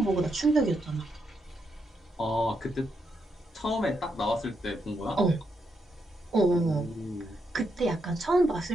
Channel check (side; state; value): both; normal; correlation 0.81